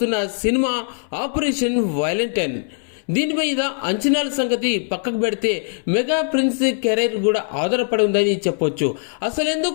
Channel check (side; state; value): right; silent; 65 dB below the other